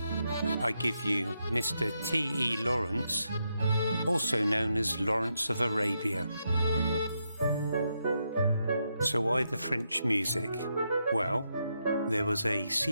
I give you Mr. T.E. Lawrence, also known as Lawrence of Arabia. So why the French music? Well, there was a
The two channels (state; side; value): inverted; both; correlation -0.82